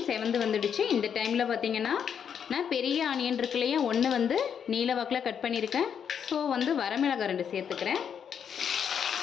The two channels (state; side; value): quieter; right; 7.8 dB